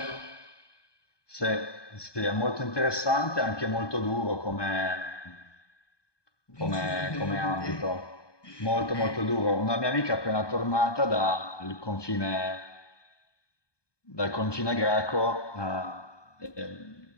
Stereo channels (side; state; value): right; late; 1.2 ms